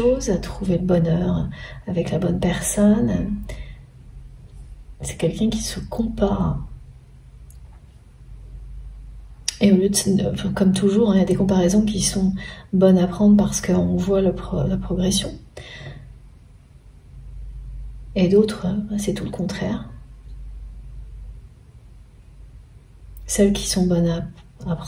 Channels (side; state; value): both; identical; correlation 1.00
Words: à trouver le bonheur avec la bonne personne. C'est quelqu'un qui se compare. Et au lieu de, comme toujours, hein, il y a des comparaisons qui sont bonnes à prendre parce qu'on voit la progression. Et d'autres, c'est tout le contraire. Celles qui sont bonnes à